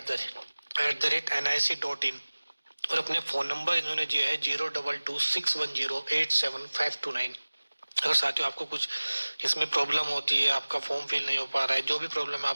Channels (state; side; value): inverted; both; correlation -1.00